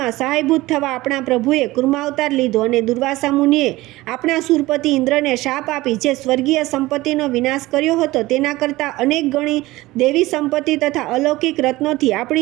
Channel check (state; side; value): quieter; left; 18.9 dB